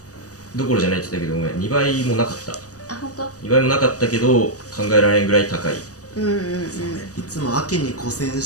どころじゃないって言ったけど、ごめん、2倍もなかった。あ、本当2倍もなかったけど考えられんぐらい高い。そうね、いつも秋に古銭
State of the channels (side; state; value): right; late; 0.66 ms